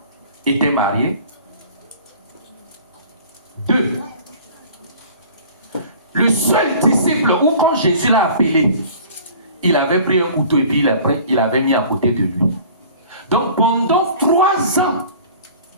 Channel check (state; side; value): inverted; both; correlation -0.46